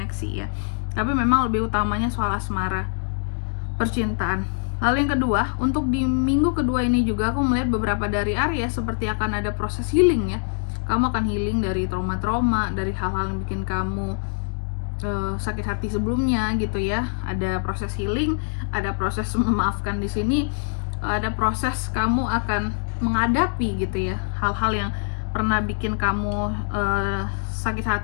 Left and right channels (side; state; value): right; silent; digital silence